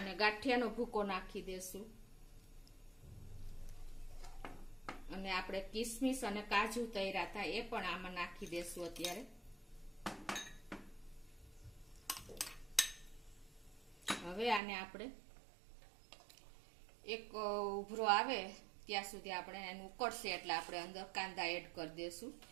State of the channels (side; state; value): left; drops out; at 14.6 s